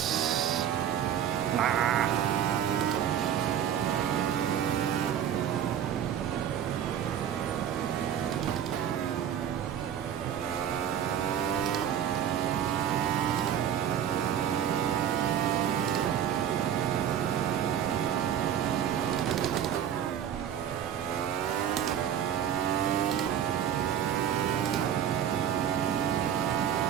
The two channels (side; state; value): left; quieter; 9.5 dB